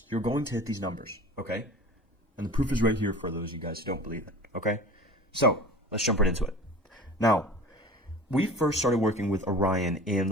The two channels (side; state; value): both; normal; correlation 0.39